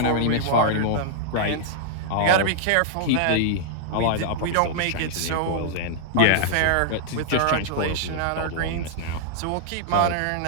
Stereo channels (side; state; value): both; different; correlation -0.01